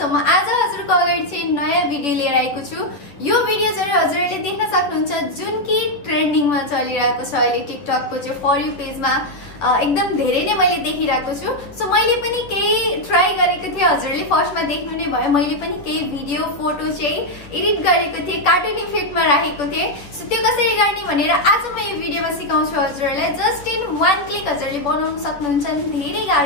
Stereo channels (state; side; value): late; right; 10 ms